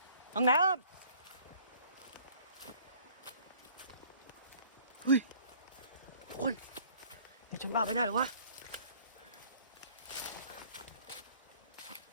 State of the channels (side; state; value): both; inverted; correlation -0.55